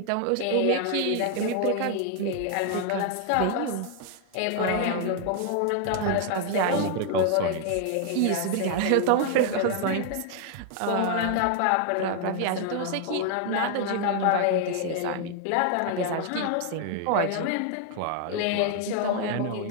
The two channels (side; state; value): both; different; correlation 0.00